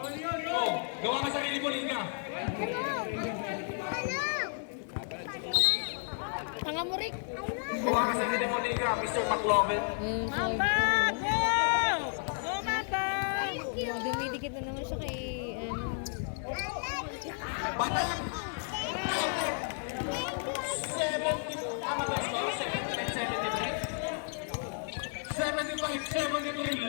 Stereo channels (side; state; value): right; silent; 56 dB below the other